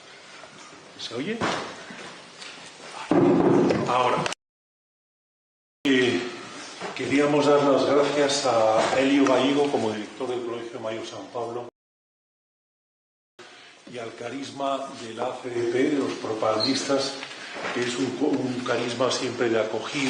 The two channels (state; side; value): identical; both; correlation 1.00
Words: ¿Se oye? Ahora. Queríamos dar las gracias a Elio Gallego como director del Colegio Mayor San Pablo y al carisma de la ACDP, de los propagandistas, que es un carisma siempre de